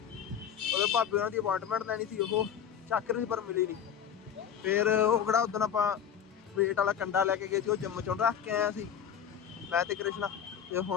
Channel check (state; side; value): quieter; right; 8.5 dB